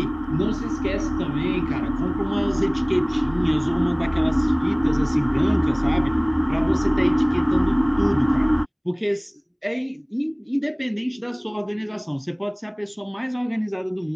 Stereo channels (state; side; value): identical; both; correlation 1.00